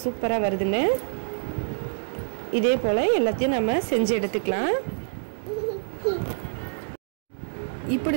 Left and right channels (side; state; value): left; silent; digital silence